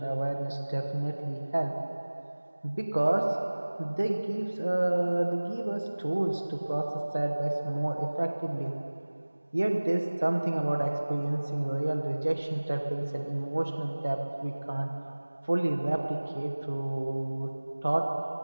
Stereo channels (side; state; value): both; inverted; correlation -1.00